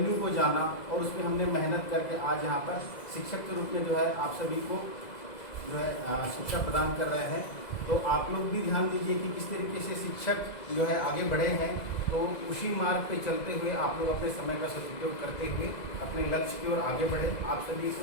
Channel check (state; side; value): late; right; 2.0 ms